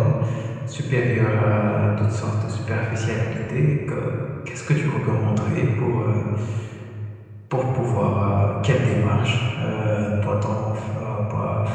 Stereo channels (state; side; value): identical; both; correlation 1.00